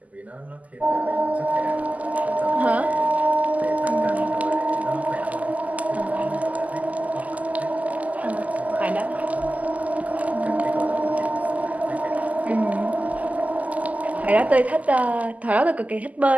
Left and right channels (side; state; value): left; late; 0.075 ms